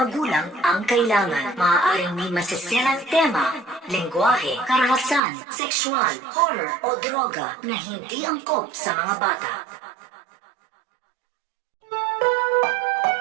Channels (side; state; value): left; drops out; at 5.2 s